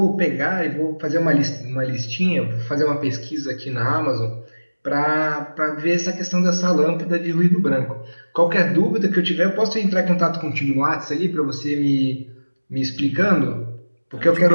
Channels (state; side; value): inverted; both; correlation -1.00